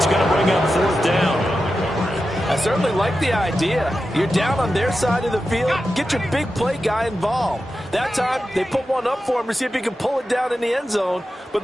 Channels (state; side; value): normal; both; correlation 0.91